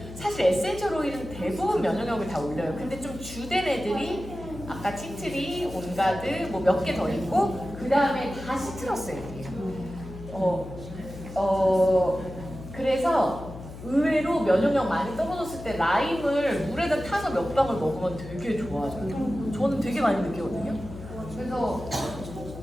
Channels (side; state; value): left; noise; hum, 13 dB below the sound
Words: 사실 에센셜 오일은 대부분 면역력을 다 올려요. 근데 좀 주된 애들이 아까 티트리, 온가드 뭐 몇 개 더 있고 그 다음에 다 시트러스 애들이에요. 그래서 의외로 면역력 많이 떨어졌을 때 라임을 물에다 타서 몇 방울 먹으면 되게 좋아져요. 저는 되게 많이 느끼거든요. 그래서